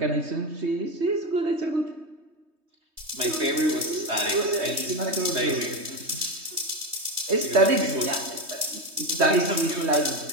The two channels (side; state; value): left; late; 3.2 ms